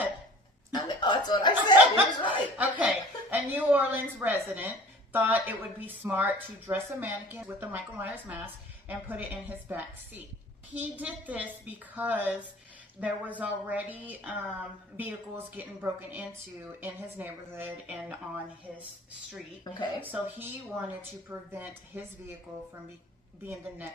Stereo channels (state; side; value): normal; both; correlation 0.45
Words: I know, that's what I said. He was right. Okay, a New Orleans resident thought it would be smart to dress a mannequin with the Michael Myers mask and put it in his back seat. He did this because there was already vehicles getting broken into in his neighborhood and on his street. Okay. So he wanted to prevent his vehicle from being the